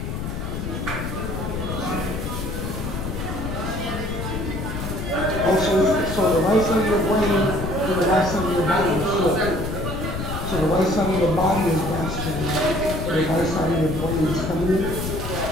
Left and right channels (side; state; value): left; noise; rumble, 5 dB below the sound